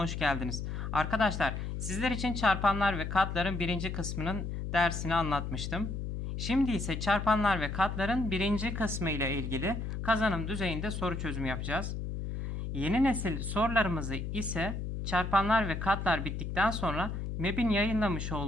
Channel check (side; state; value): left; noise; hum, 4 dB below the sound